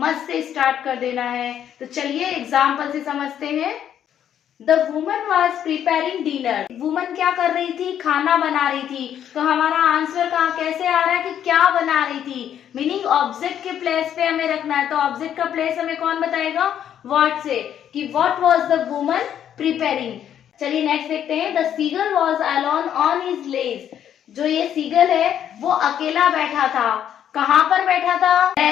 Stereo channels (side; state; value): right; quieter; 9.8 dB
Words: से स्टार्ट कर देना है। तो चलिए एग्जाम्पल से समझते हैं। The woman was preparing dinner. Woman क्या कर रही थी? खाना बना रही थी। तो हमारा आंसर कहाँ कैसे आ रहा है कि क्या बना रही थी? मीनिंग ऑब्जेक्ट के प्लेस पे हमें रखना है। तो ऑब्जेक्ट का प्लेस हमें कौन बताएगा? व्हाट से, कि what was the woman preparing. चलिए नेक्स्ट देखते हैं। The seagull was alone on his ledge. जो ये सीगल है वो अकेला बैठा था। कहाँ पर बैठा था?